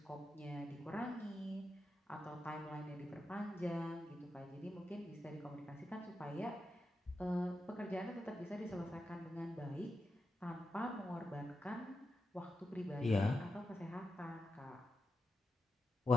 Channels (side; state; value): both; normal; correlation 0.88